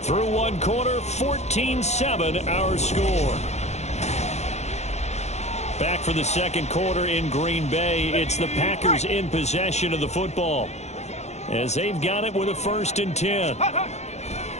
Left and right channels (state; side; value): late; right; 0.32 ms